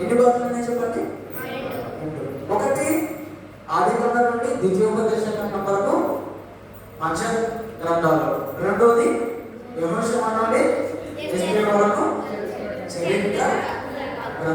భాగాలు చెప్పండి? ఒకటి ఆదికాండం నుండి ద్వితీయోపదేశ కాండం వరకు మధ్య గ్రంథాలు. రెండోది యెహోషువ నుండి ఎస్తేరు వరకు చరిత్ర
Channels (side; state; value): both; identical; correlation 1.00